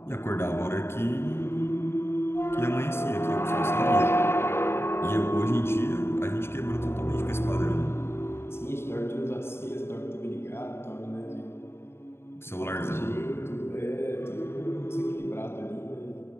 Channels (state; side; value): late; right; 0.12 ms